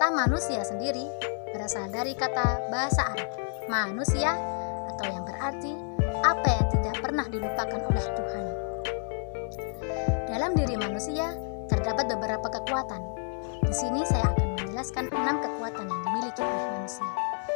manusia sendiri berasal dari kata bahasa Arab manusia, atau yang berarti apa yang tidak pernah dilupakan oleh Tuhan. Dalam diri manusia terdapat beberapa kekuatan. Di sini saya akan menjelaskan 6 kekuatan yang dimiliki oleh manusia.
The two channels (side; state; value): right; silent; digital silence